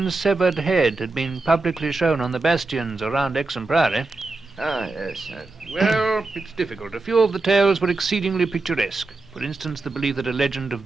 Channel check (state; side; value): quieter; left; 3.4 dB